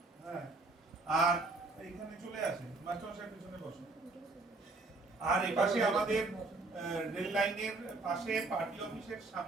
হ্যাঁ, আর এইখানে চলে আসেন, মাস্টারমশাই পিছনে বসুন। আর এপাশে আমাদের রেল লাইনের পাশে পার্টি অফিসের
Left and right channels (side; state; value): left; quieter; 3.4 dB